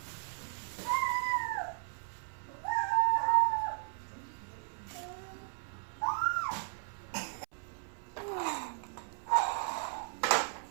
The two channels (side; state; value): left; silent; 54 dB below the other